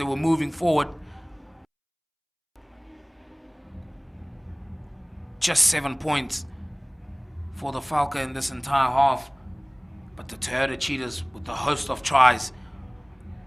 were moving forward. Just 7 points for the Valke in this entire half. But the Toyota Cheetahs with the host of tries.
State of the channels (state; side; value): identical; both; correlation 1.00